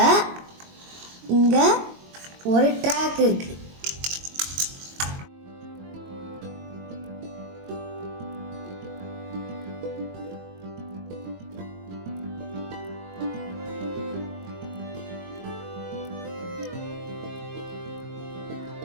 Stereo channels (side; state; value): left; late; 22 ms